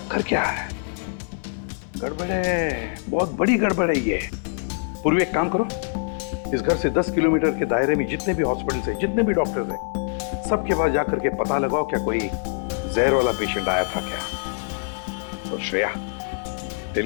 क्या है? गड़बड़ है, बहुत बड़ी गड़बड़ है ये। पूर्वी एक काम करो, इस घर से 10 किलोमीटर के दायरे में जितने भी हॉस्पिटल्स हैं, जितने भी डॉक्टर्स हैं, सबके पास जाकर के पता लगाओ क्या कोई जहर वाला पेशेंट आया था क्या। और श्रेया,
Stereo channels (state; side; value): silent; right; 59 dB below the other